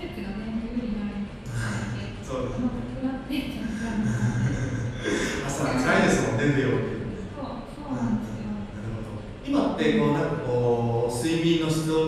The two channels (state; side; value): identical; both; correlation 1.00